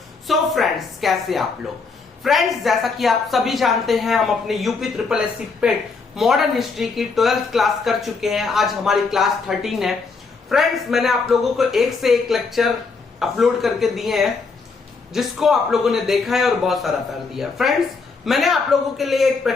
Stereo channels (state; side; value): quieter; right; 4.5 dB